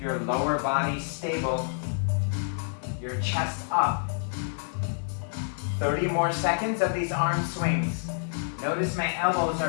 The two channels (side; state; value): right; silent; digital silence